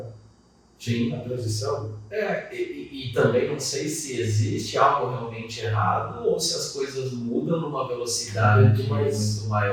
Sim. A transição. E também não sei se existe algo realmente errado ou se as coisas mudam numa velocidade muito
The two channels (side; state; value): both; identical; correlation 1.00